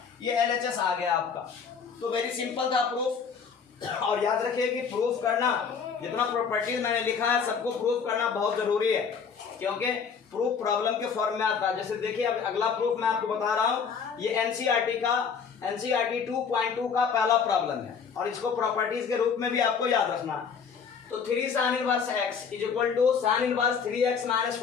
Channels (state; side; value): quieter; right; 6.2 dB